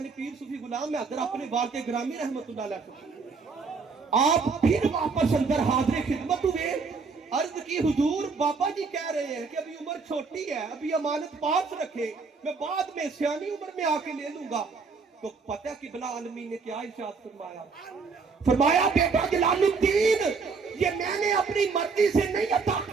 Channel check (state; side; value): quieter; left; 4.8 dB